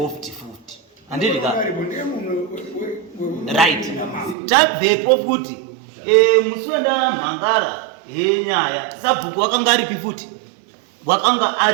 futi handiti ka right tabvepo futi musi wendamhangara henyaya sabhuku wakanga aripi futi wakanga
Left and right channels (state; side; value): drops out; left; at 4.4 s